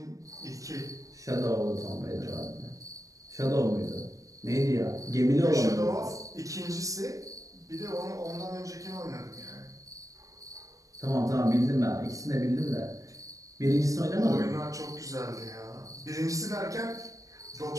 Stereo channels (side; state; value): left; late; 0.16 ms